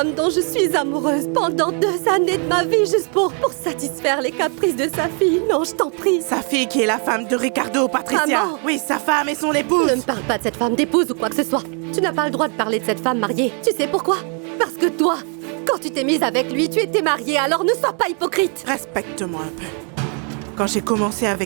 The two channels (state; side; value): quieter; left; 39.1 dB